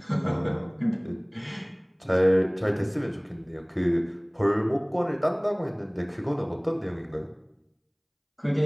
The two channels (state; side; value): identical; both; correlation 1.00